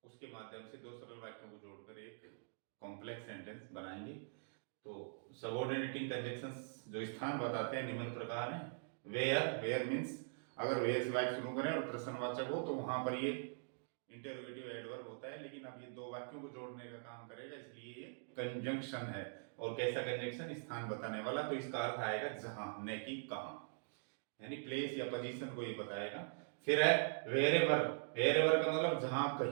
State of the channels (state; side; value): silent; left; digital silence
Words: उसके माध्यम से दो सरल वाक्यों को जोड़कर एक कॉम्प्लेक्स सेंटेंस बनाएंगे। तो सबऑर्डिनेटिंग कंजंक्शंस जो स्थान बताते हैं निम्न प्रकार हैं। वेयर, वेयर मीन्स अगर वेयर से वाक्य शुरू करें और प्रश्नवाचक हो तो वहां पर ये इंटरोगेटिव एडवर्ब होता है, लेकिन अब ये दो वाक्यों को जोड़ने का काम करेगा, इसलिए ये कंजंक्शन है। और कैसा कंजंक्शन? स्थान बताने वाला। तो इसका अर्थ आएगा जहां, न कि कहां, यानी प्लेस या पोजीशन को ये बताएगा। फिर है वेरेवर, वेरेवर का मतलब जहां